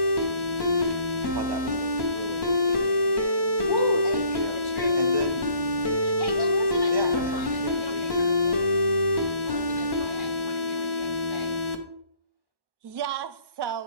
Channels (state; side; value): late; left; 1.1 ms